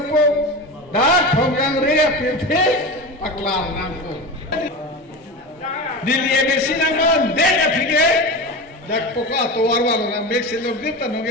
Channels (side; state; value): both; normal; correlation 0.26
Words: da Phongjang re pepe pakla nangpo diliye besi nangko dek apike jak poka towar wala na mek selok dita